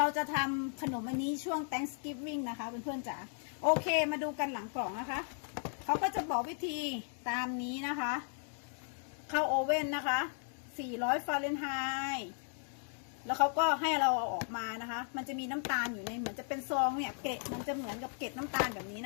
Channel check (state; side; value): silent; right; 54 dB below the other